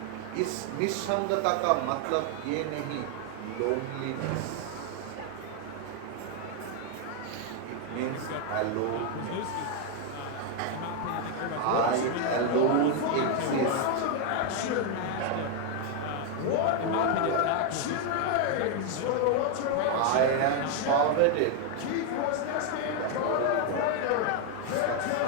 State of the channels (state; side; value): different; both; correlation 0.00